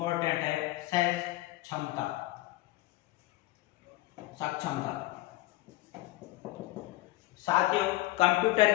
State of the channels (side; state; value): right; quieter; 18.1 dB